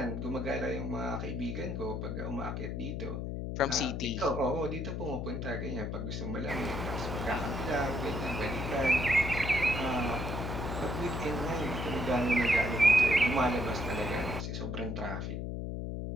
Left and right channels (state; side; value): noise; left; hum, 3 dB below the sound